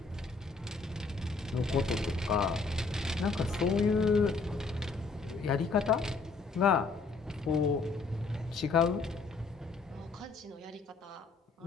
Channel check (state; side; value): quieter; right; 4.2 dB